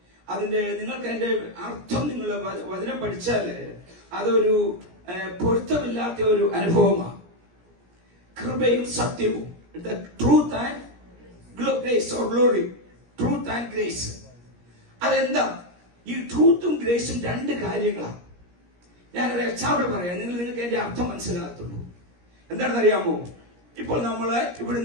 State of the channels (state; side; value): late; left; 17 ms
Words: അതിന്റെ നിങ്ങൾക്ക് അതിന്റെ അർത്ഥം നിങ്ങൾ വചനം പഠിച്ചാല് അതൊരു പൊരുത്തമില്ലാത്ത ഒരു അനുഭവമാണ്. കൃപയും സത്യവും, truth and grace or glory, truth and grace. അതെന്താ? ഈ ട്രൂത്തും ഗ്രേസും രണ്ട് കാര്യങ്ങളാണ്. ഞാനൊരു എക്സാമ്പിൾ പറയാം, നിങ്ങൾക്ക് അതിന്റെ അർത്ഥം മനസ്സിലാകത്തുള്ളൂ. എന്താണെന്ന് അറിയാമോ? ഇപ്പോൾ നമ്മള്